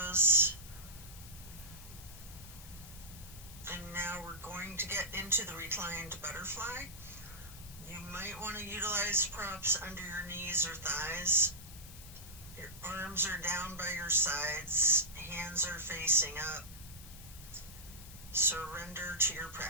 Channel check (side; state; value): left; noise; hiss, 16 dB below the sound